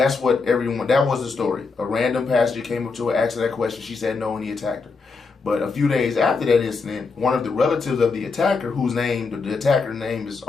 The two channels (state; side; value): quieter; right; 4.5 dB